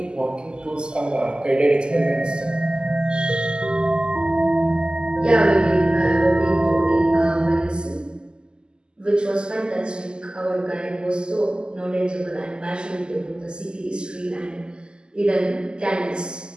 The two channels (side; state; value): left; late; 0.047 ms